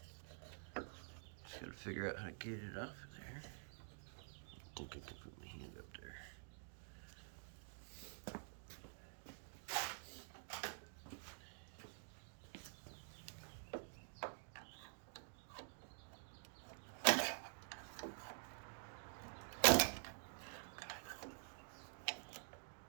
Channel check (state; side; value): silent; left; digital silence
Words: just gotta figure out how to get it off of there. I think I can put my hand up there.